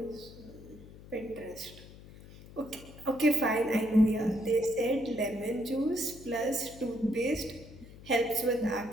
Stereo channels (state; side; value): noise; left; hum, 18 dB below the sound